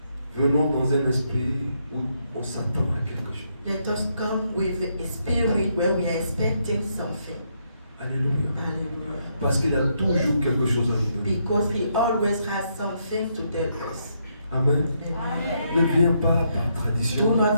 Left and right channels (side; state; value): both; inverted; correlation -0.77